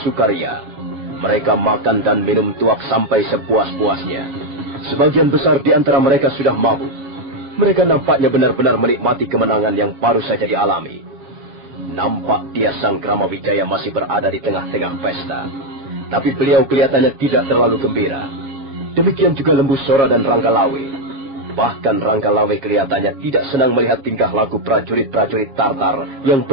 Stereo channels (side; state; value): left; late; 7.2 ms